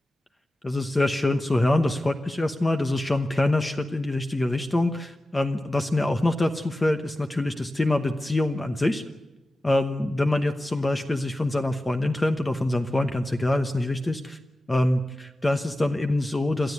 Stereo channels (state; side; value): normal; both; correlation 0.94